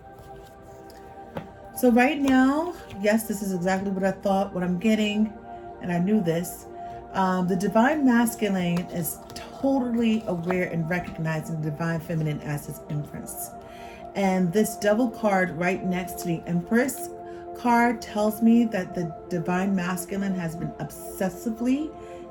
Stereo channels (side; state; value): both; identical; correlation 1.00